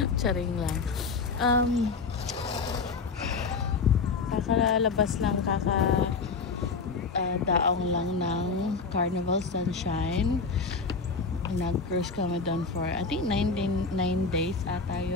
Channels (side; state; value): right; quieter; 4.7 dB